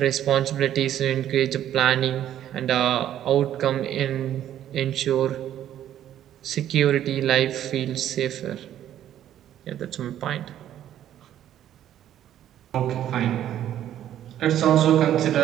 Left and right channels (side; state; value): left; quieter; 11.3 dB